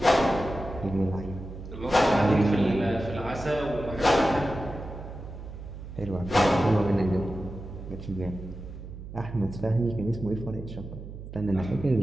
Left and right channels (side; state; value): right; noise; hum, 12 dB below the sound